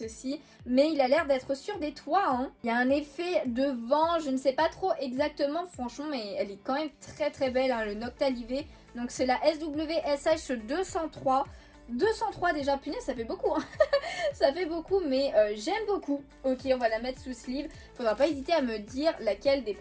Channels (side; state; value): both; identical; correlation 1.00